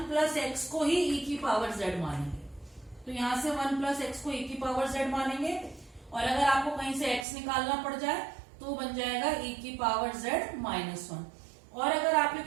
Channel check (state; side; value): drops out; left; at 7.2 s